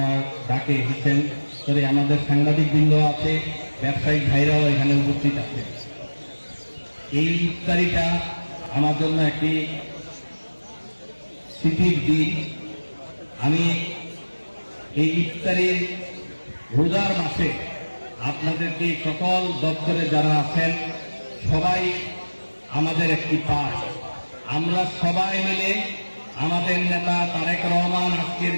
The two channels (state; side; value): inverted; both; correlation -1.00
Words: ডাকে এসেছেন। তবে আমাদের সাংবাদিক বৃন্দ আছে, ব্যবসায়িক ভাইরাও এখানে উপস্থিত আছে। এই ইফতারিটা আমার জন্য একটি স্মৃতির দিন। আমি এই ইফতারির রোজার মাসে আপনাদেরকে সকল দপ্তরে যারা আছেন সবাই আমাদের একটি পাঠ, আমরা সবাই মিলে আমাদের নেতা তারেক রহমান আজকের